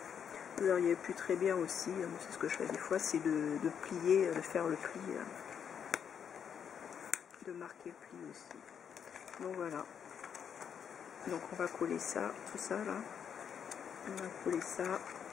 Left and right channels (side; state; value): right; quieter; 7.8 dB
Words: Vous auriez pu très bien aussi, c'est ce que je fais des fois, c'est de plier, de faire le pli, de marquer le pli aussi. Donc voilà. Donc on va coller ça, tout ça là. On va coller ça,